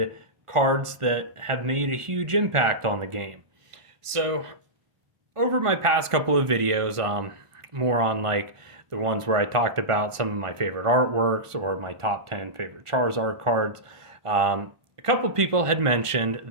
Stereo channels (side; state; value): left; late; 1.5 ms